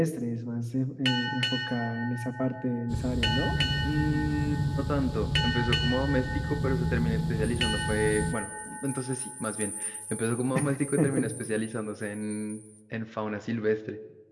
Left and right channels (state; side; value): identical; both; correlation 1.00